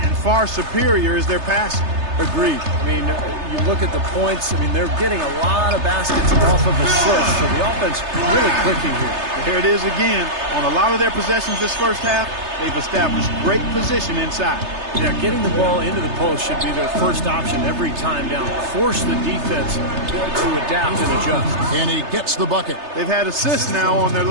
far superior is their passing. Agreed. I mean, you look at the points. I mean, they're getting a lot of baskets off of assists, so the offense really clicking here. Here it is again. On a lot of their possessions this first half, they've established great position inside. Yeah, getting the ball into the post should be their first option every time down. Force the defense to adapt and adjust. And he gets the bucket. They've had assists now on their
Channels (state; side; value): late; left; 3.3 ms